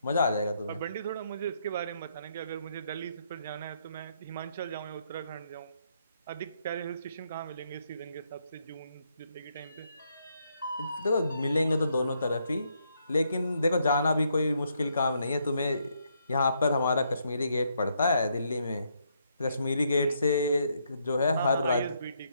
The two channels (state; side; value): inverted; both; correlation -0.75